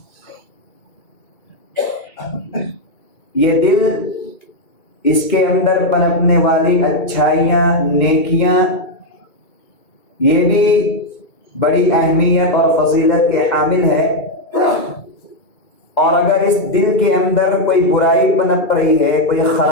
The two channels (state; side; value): late; right; 2.2 ms